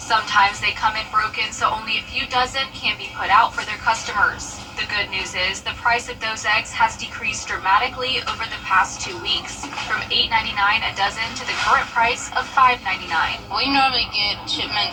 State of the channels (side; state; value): both; identical; correlation 1.00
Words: they come in broken, so only a few dozen can be put out for their customers. The good news is the price of those eggs has decreased dramatically over the past 2 weeks, from $8.99 a dozen to the current price of $5.99. We normally get